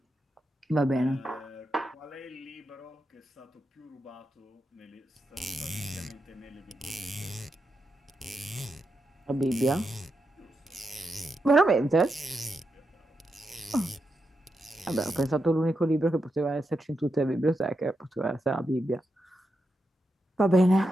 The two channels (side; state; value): both; normal; correlation 0.86